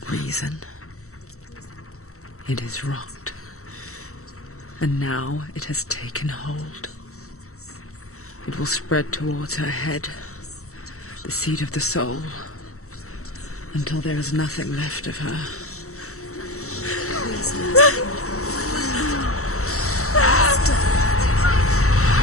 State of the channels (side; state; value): right; late; 0.64 ms